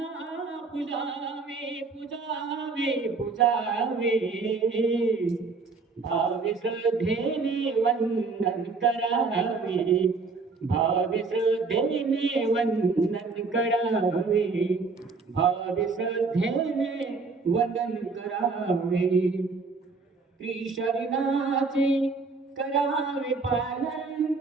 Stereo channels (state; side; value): quieter; left; 4.2 dB